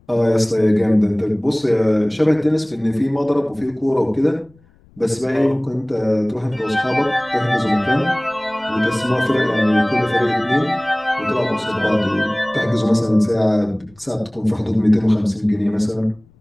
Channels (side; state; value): left; noise; rumble, 30 dB below the sound